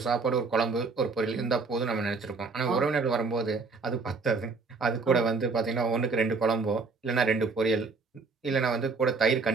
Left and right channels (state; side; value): quieter; left; 4.2 dB